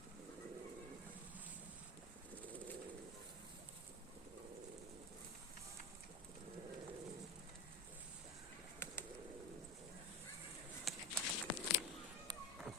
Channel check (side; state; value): both; normal; correlation 0.17